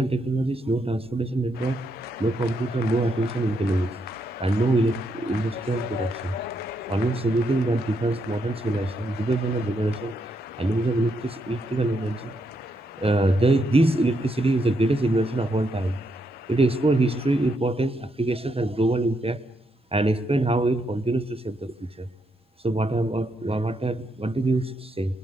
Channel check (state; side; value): normal; both; correlation 0.78